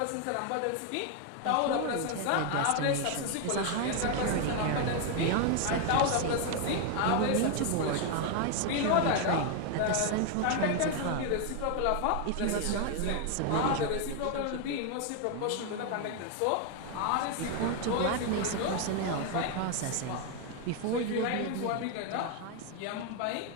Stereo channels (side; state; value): both; different; correlation 0.01